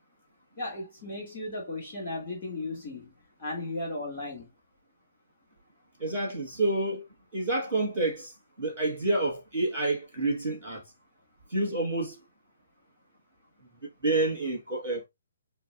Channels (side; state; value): both; inverted; correlation -0.57